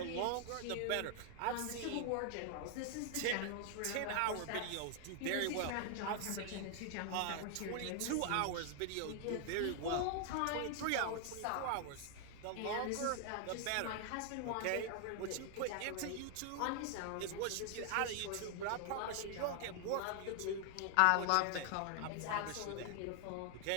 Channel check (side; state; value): both; different; correlation 0.00